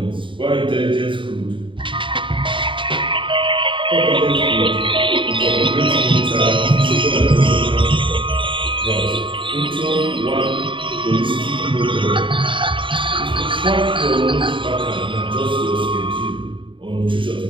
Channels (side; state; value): left; late; 0.24 ms